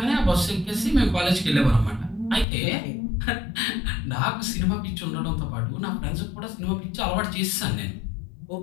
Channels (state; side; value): drops out; right; at 2.5 s